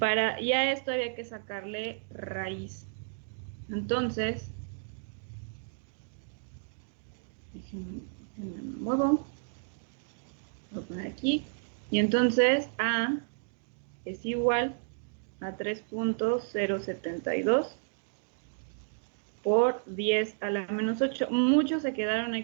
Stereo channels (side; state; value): left; silent; digital silence